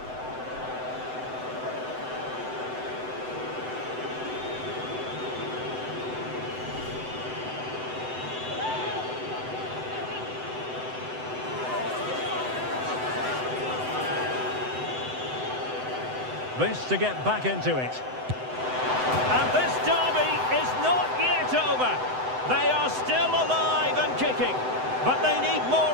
This to get back into it. And this derby is not yet over. They are still alive and kicking, but they need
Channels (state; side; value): late; left; 7.9 ms